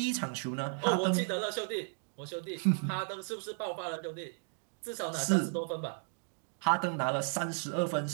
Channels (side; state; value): left; silent; 55 dB below the other